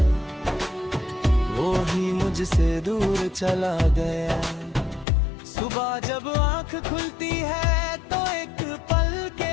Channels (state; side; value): drops out; right; at 5.1 s